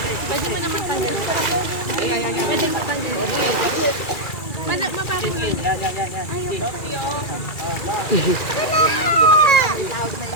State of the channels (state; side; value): late; right; 2.3 ms